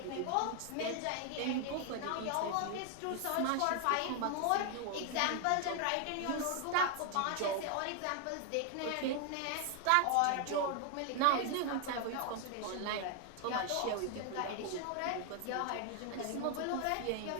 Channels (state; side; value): different; both; correlation 0.00